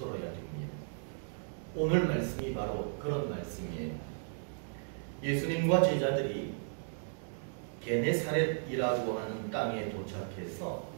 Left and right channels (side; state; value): left; silent; digital silence